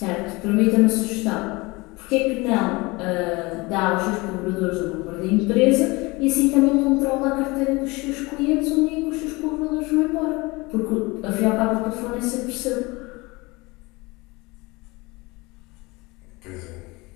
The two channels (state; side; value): quieter; right; 24.0 dB